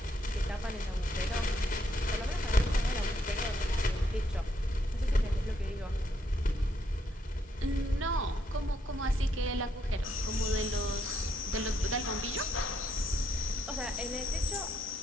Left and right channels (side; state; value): both; normal; correlation 0.74